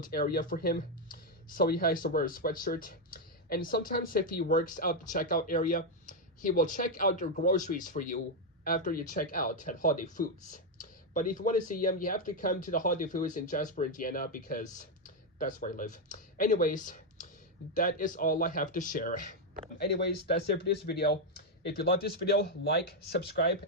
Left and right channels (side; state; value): both; normal; correlation 0.02